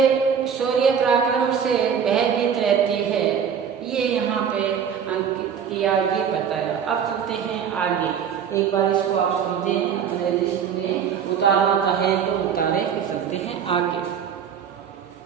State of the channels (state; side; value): quieter; left; 7.7 dB